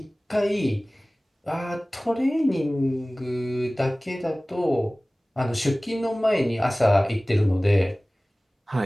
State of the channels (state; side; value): normal; both; correlation 0.98